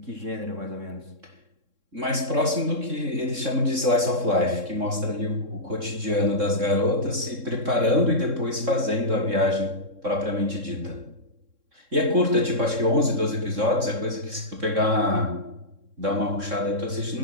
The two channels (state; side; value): late; left; 3.6 ms